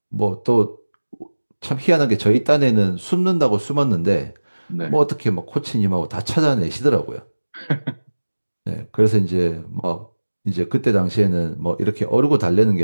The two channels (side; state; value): both; inverted; correlation -1.00